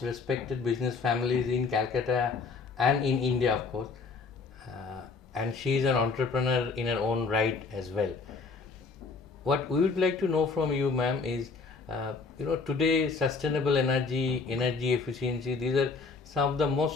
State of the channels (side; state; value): right; quieter; 4.6 dB